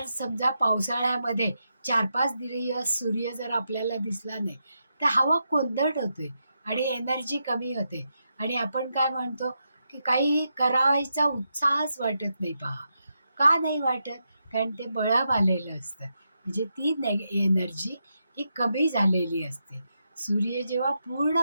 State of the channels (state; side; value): inverted; both; correlation -0.85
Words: समजा पावसाळ्यामध्ये 4-5 दिवस सूर्य जर आपल्याला दिसला नाही, तर हवा कोंदट होते आणि एनर्जी कमी होते. आणि आपण काय म्हणतो की काही करायचा उत्साहच वाटत नाही. पहा, का नाही वाटत? कारण ते बळाव आलेलं असतं. म्हणजे ती एनर्जी ही कमी झालेली असते. सूर्य जेव्हा पूर्ण